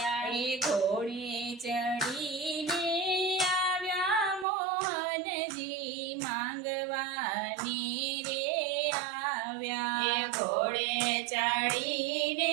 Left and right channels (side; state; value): left; drops out; at 4.5 s